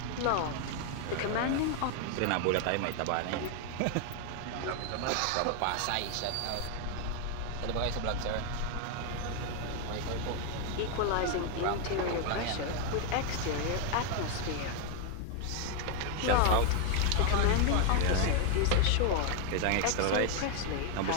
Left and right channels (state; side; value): different; both; correlation 0.01